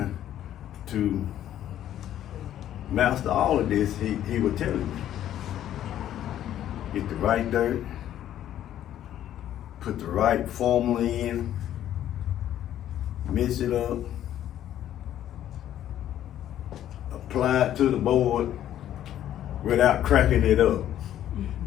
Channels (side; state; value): right; quieter; 11.6 dB